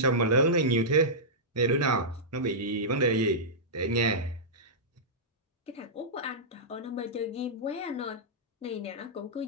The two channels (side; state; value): both; normal; correlation -0.13